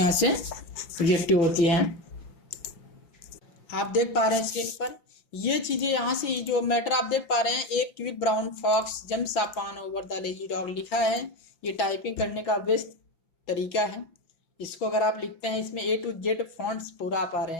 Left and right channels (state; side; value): late; right; 5.8 ms